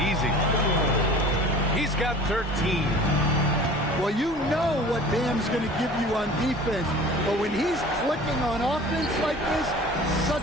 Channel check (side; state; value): both; normal; correlation 0.43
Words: easy. He's got 13. Well, you know what Bam's going to give you on defense, but when he's clicking on offense like this,